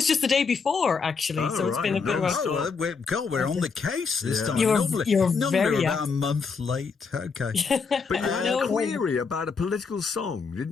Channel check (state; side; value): quieter; right; 5.2 dB